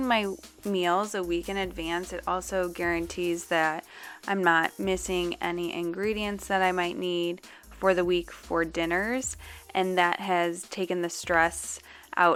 my meals a week in advance, it also guarantees that I'm not missing any ingredients that I might need for the week for dinners, and that has taken the stress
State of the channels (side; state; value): both; identical; correlation 1.00